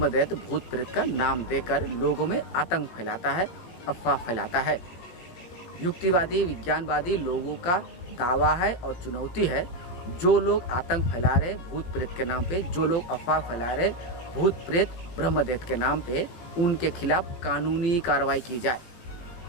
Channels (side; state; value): right; late; 17 ms